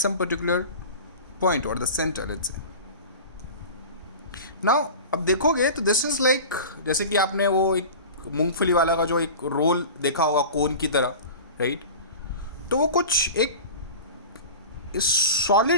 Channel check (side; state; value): both; inverted; correlation -0.34